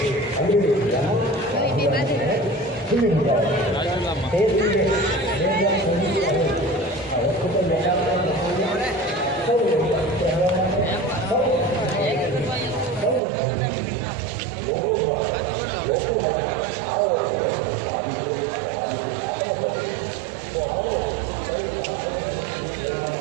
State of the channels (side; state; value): left; drops out; at 13.2 s